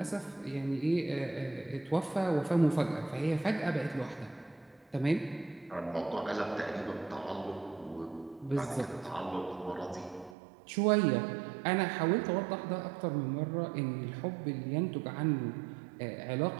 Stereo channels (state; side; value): drops out; left; at 10.4 s